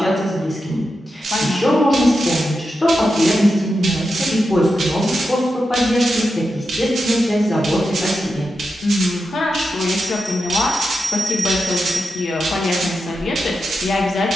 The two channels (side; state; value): both; normal; correlation 0.89